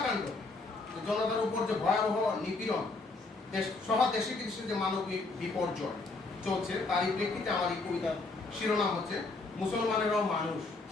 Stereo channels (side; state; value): right; quieter; 3.6 dB